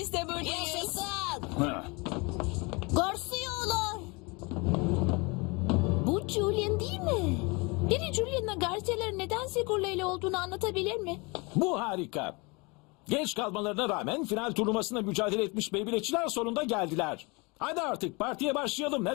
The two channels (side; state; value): right; quieter; 27.8 dB